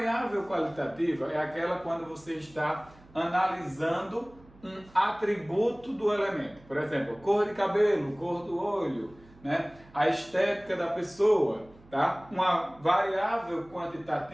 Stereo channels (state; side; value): noise; right; hum, 25 dB below the sound